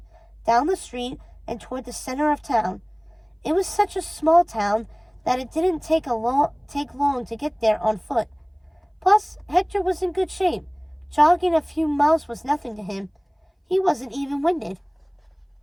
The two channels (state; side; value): identical; both; correlation 1.00